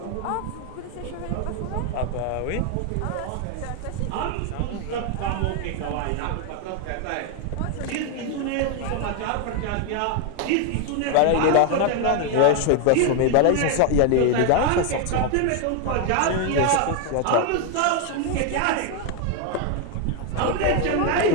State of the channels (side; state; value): both; different; correlation 0.01